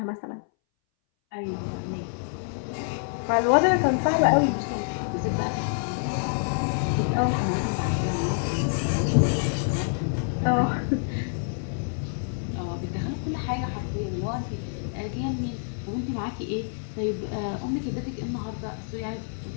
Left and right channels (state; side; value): silent; right; 60 dB below the other